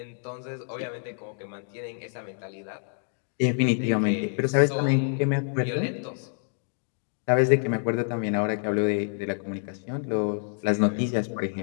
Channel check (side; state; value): right; silent; 60 dB below the other